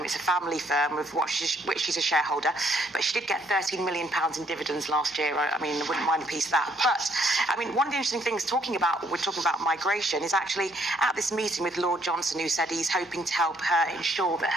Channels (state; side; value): normal; both; correlation 0.68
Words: It's a family firm of which she's a shareholder, but she did get £13 million in dividends last year. I mean, I wouldn't mind a piece of that. But, I mean, one of the interesting things we're talking about migration, is actually at this meeting with Lord Johnson, who said he's hoping to help her ensure that